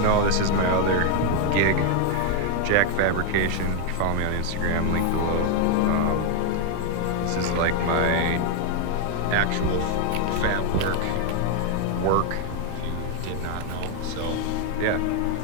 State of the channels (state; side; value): different; both; correlation 0.01